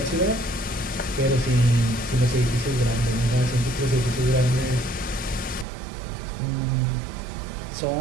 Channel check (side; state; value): left; drops out; at 5.7 s